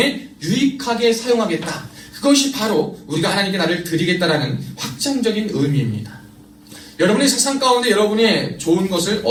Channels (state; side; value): identical; both; correlation 1.00